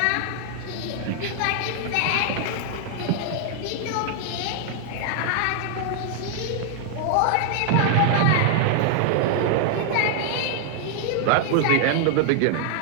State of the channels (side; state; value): both; different; correlation 0.00